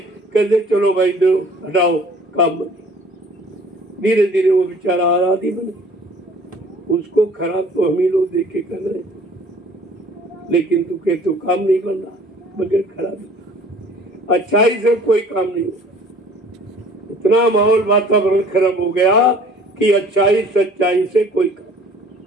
कहते चलो भाई दो हटाओ काम बने। धीरे धीरे वो बेचारा आराधी बन गया। उसको खराब तो हम ही लोग देख के कर रहे थे, लेकिन तू कह तो काम नहीं बन रहा बगैर खराब। अच्छाई से कोई काम नहीं होता। इतना माहौल वातावरण खराब हो गया कि अच्छाई सच्चाई से कोई काम,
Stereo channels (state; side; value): normal; both; correlation 0.51